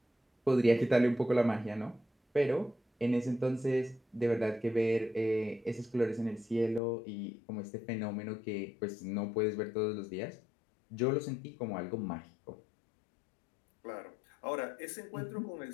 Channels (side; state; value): right; drops out; at 6.8 s